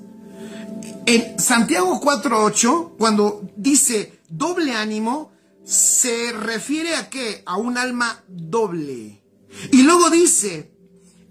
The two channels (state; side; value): identical; both; correlation 1.00